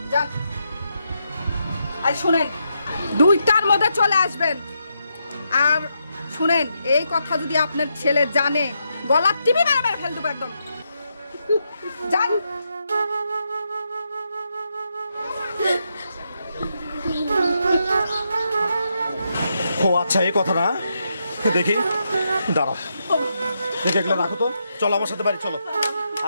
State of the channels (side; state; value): both; inverted; correlation -0.82